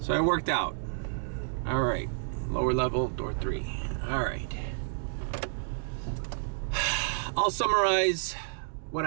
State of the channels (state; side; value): silent; left; digital silence